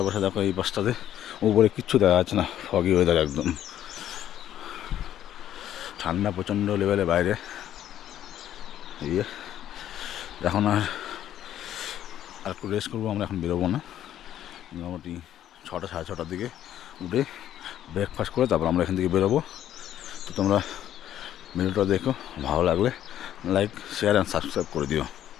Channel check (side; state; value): right; quieter; 11.4 dB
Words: দেখো এই পাশটাতে উপরে কিচ্ছু দেখা যাচ্ছে না, ফগি ওয়েদার একদম। ঠান্ডা প্রচণ্ড লেভেলে বাইরে। এই এখন আর একটু রেস্ট করবো আমরা, এখন বেরোবো না। মোটামুটি 6টা সাড়ে 6টার দিকে উঠে ব্রেকফাস্ট করে তারপর আমরা এখান থেকে বেরোবো। তো তোমরা ভিডিওটা দেখো, ভালো লাগলে লাইক, শেয়ার অ্যান্ড সাবস্ক্রাইব করে দিও।